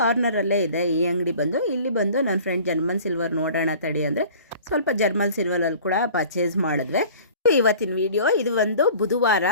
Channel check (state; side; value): inverted; both; correlation -0.46